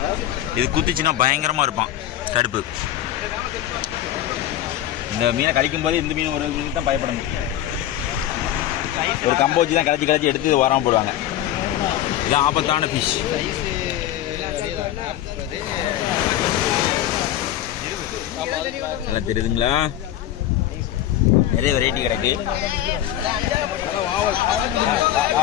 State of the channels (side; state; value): right; quieter; 12.5 dB